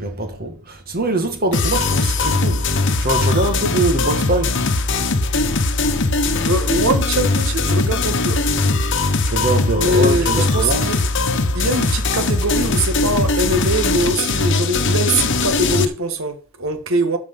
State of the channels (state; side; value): normal; both; correlation 0.39